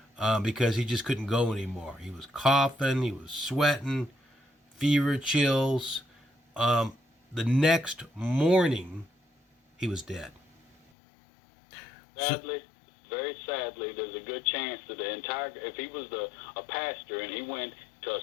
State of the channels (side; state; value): right; drops out; at 10.8 s